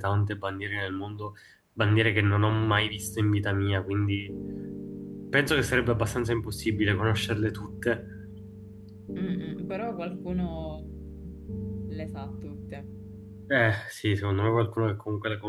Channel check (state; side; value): identical; both; correlation 1.00